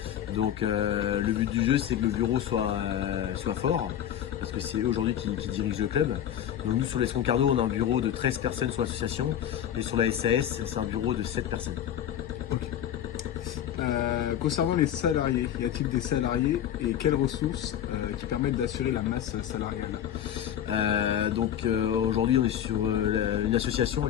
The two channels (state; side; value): quieter; right; 10.4 dB